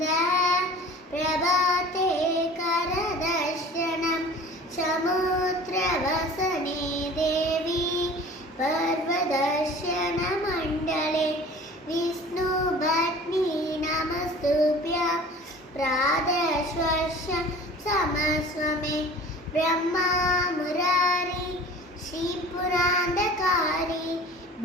பிரபாதே கரதர்ஷனம் சமுத்திரவசனே தேவி पर्वदर्शन मंडले विष्णु भट्नी नमस्तुभ्य प्रादश्वस्य समस्वमे ब्रह्मा मुरारी श्रीपुरांधकारी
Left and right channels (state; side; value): normal; both; correlation 0.43